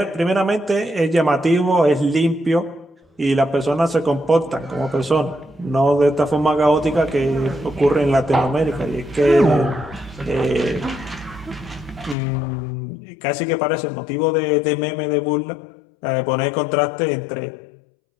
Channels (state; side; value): drops out; right; at 12.2 s